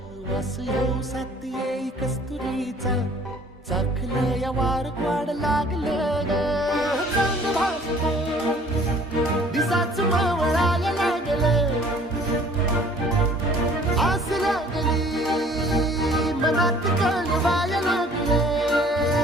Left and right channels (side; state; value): both; normal; correlation 0.53